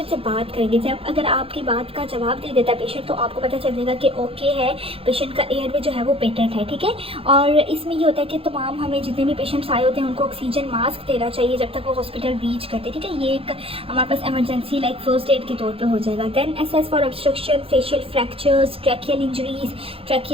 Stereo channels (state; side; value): late; left; 0.27 ms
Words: से बात करेंगे, जब अगर आपकी बात का जवाब दे देता है पेशेंट तो आपको पता चल जाएगा कि ओके है, पेशेंट का एयरवे जो है वो पेटेंट है, ठीक है। और इसमें ये होता है कि तमाम हमें जितने भी पेशेंट्स आए होते हैं उनको ऑक्सीजन मास्क देना चाहिए जब तक वो हॉस्पिटल रीच करते, ठीक है। ये एक हमारे पास एमरजेंसी लाइक फर्स्ट एड के तौर पर हो जाएगा। Then assess for obstruction, facial fractures, tracheal injuries,